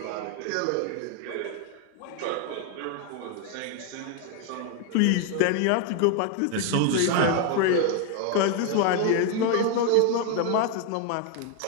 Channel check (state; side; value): different; both; correlation 0.01